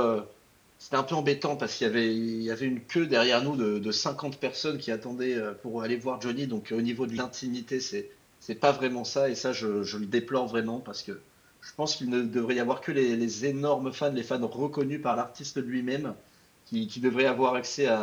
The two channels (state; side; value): identical; both; correlation 1.00